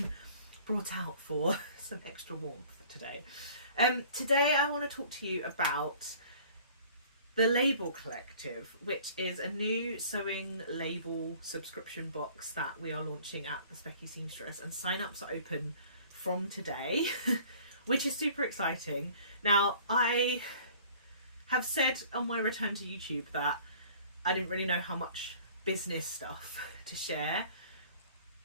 brought out for some extra warmth today. Today I want to talk to you about the Label Collective, which is a new sewing label subscription box that we are launching at the Specky Seamstress, and sign-ups are open from today, which is super exciting. Now, I have said on my return to YouTube that I didn't really know how much business stuff to share,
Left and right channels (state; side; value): inverted; both; correlation -0.50